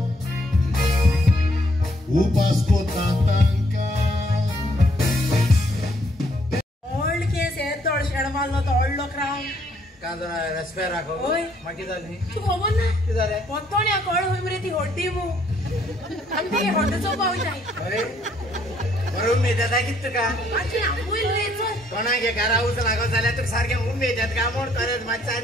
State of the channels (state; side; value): normal; both; correlation 0.67